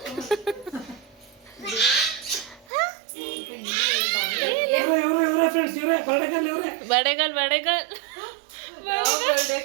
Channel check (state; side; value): drops out; left; at 2.7 s